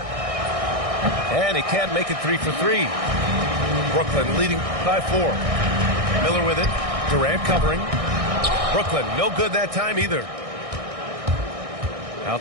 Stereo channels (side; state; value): left; late; 1.6 ms